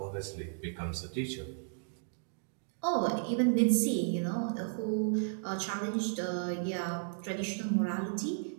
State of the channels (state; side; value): silent; left; digital silence